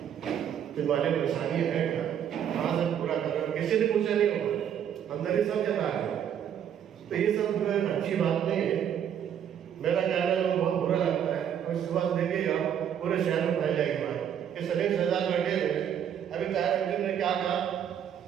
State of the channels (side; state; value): left; quieter; 9.2 dB